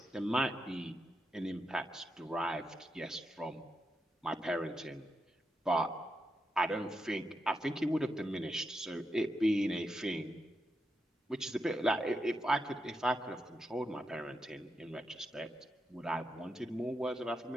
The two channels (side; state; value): both; normal; correlation 0.85